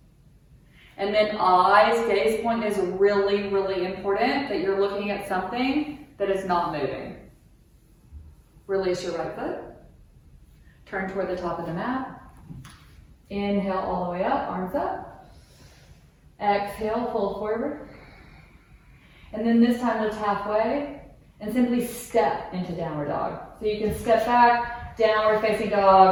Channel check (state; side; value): identical; both; correlation 1.00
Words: And then eyes, gaze point is really, really important that you're looking at something that is not moving. Release your right foot. Turn toward the top of the mat. Inhale all the way up, arms up. Exhale, fold forward. And then this time lift halfway and simply step into downward dog. So you can step back, downward facing